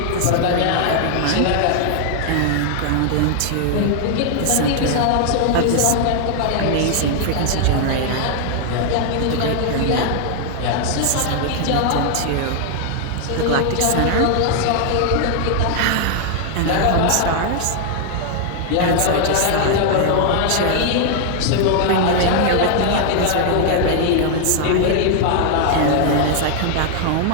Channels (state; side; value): different; both; correlation 0.00